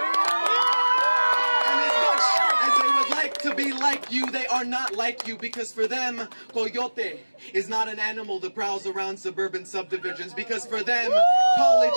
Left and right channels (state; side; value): inverted; both; correlation -1.00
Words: And as much as they would like to be like you, they are not like you, because for them, coyote is not an animal that prowls around suburban subdivisions, because for them,